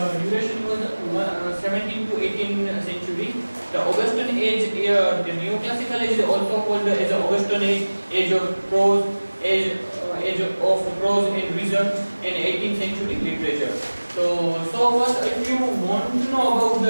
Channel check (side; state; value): both; inverted; correlation -1.00